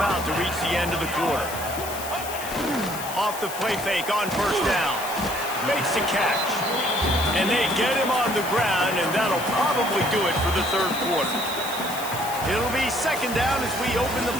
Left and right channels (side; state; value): left; noise; hiss, 10 dB below the sound